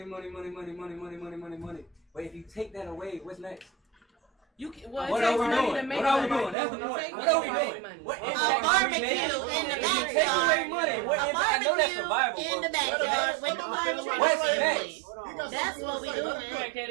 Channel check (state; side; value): drops out; left; at 6.6 s